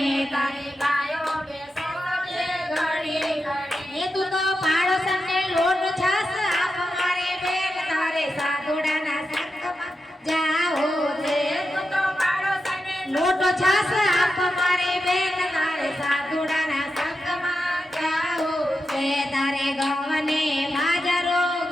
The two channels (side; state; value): both; normal; correlation 0.88